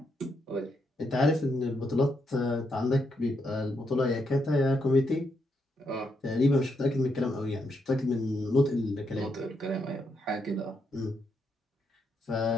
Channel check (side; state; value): both; normal; correlation 0.79